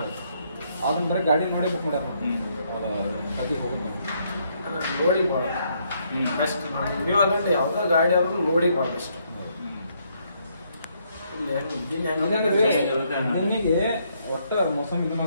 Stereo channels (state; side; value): inverted; both; correlation -0.72